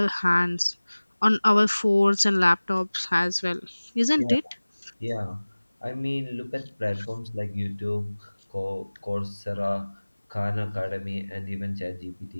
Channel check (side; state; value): both; inverted; correlation -1.00